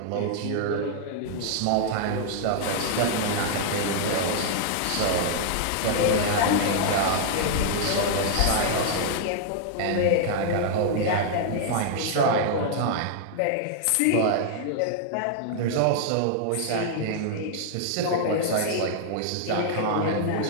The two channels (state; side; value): different; both; correlation -0.01